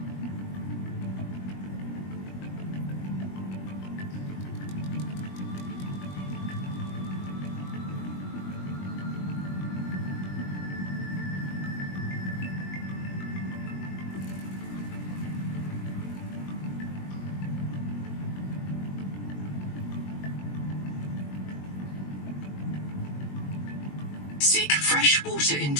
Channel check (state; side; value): late; right; 21 ms